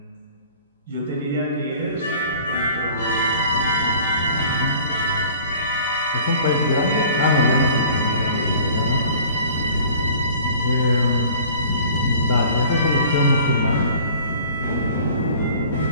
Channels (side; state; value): both; inverted; correlation -0.48